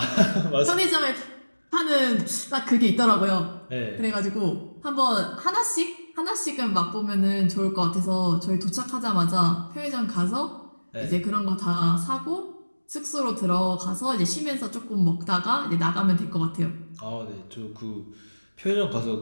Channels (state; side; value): inverted; both; correlation -1.00